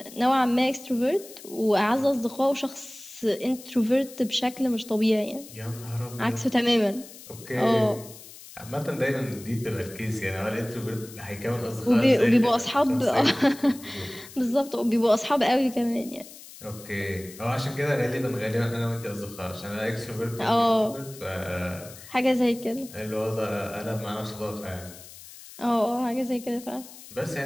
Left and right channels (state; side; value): noise; left; hiss, 17 dB below the sound